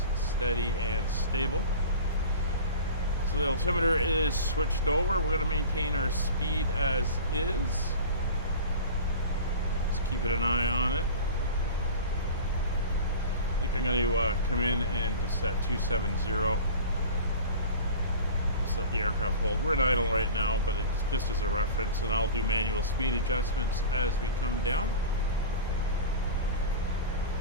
and steady and stable. So the altimeter is switched over. We're going to maintain our speed as is. Just keeping an eye on it. I think I'm going to come in and just set 270. Just let the aircraft hold. We're in idle right now, but it's just as a reference, and I'll do manual speed adjustments as we come down.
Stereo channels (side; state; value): both; inverted; correlation -0.36